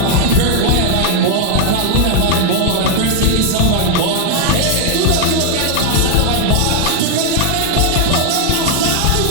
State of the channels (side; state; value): both; different; correlation 0.00